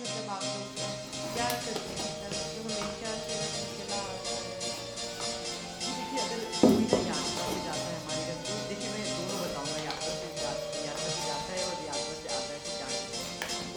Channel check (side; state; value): both; identical; correlation 1.00